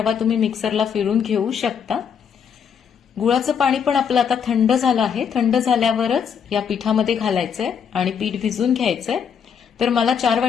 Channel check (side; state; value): right; quieter; 7.3 dB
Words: तुम्ही मिक्सरला फिरून घेऊ शकता. गुळाचं पाणी पण आपलं आता थंड झालं आहे. थंड झाल्यावरच या पिठामध्ये घालायचंय आणि पीठ भिजून घ्यायचंय. तर मला 4